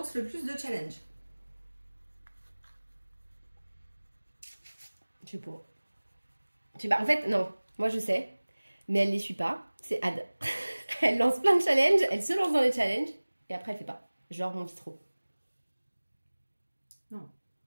le plus de challenges? Je sais pas. En fait, non. Moi, je sais. Mais elle les suit pas. C'est Ad. Elle lance plein de challenges. Elle se lance dans les challenges. Et après, elle fait pas. Genre mon bistrot. Non,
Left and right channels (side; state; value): both; inverted; correlation -1.00